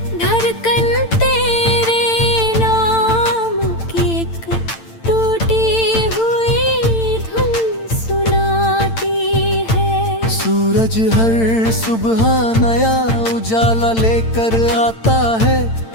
धड़कन तेरे नाम की एक टूटी हुई धुन सुनाती है। सूरज हर सुबह नया उजाला लेकर आता है,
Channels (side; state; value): right; late; 8.9 ms